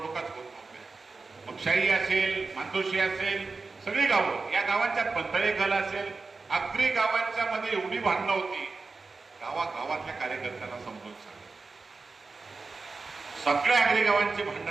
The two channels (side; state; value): left; quieter; 4.1 dB